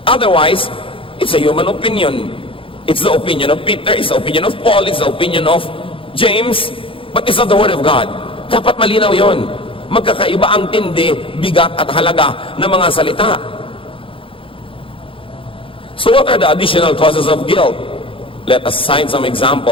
Otherwise, it's a human opinion. It's the opinion of Peter, it's the opinion of Paul, it's the opinion of James, but it's not the word of God. Dapat malinaw yon. Magkakaiba ang tindi, bigat at halaga ng mga salita. So what are the additional causes of guilt? Let us cite some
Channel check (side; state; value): right; late; 0.26 ms